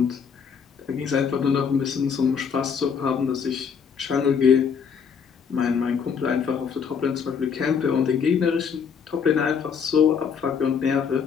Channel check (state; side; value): quieter; right; 6.6 dB